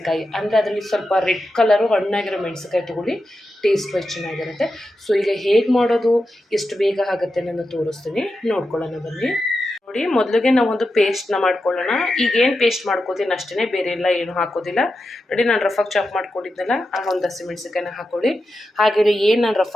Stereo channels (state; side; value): normal; both; correlation 0.89